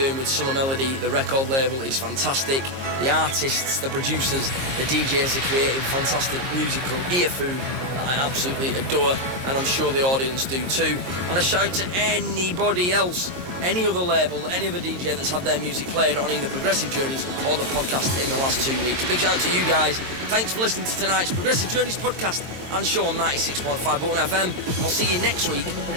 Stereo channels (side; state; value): left; late; 22 ms